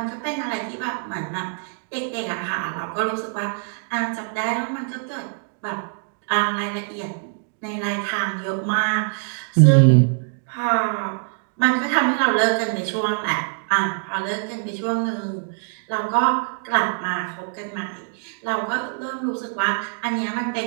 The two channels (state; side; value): silent; left; 61 dB below the other